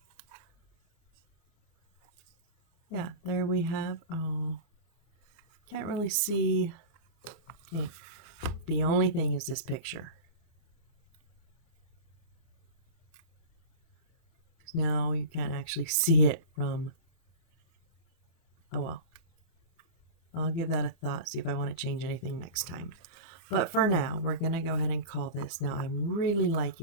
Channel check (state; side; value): late; right; 24 ms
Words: yeah, there we have. Oh, can't really see. Okay. The only thing is this picture. Now you can't actually see it from. Oh well. I'll give that a thought, see if I want to change anything next time. But for now, we're going to go ahead and call this. Now, I'm really